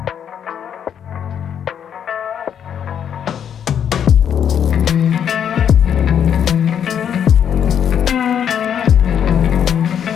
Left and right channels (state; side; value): quieter; right; 8.7 dB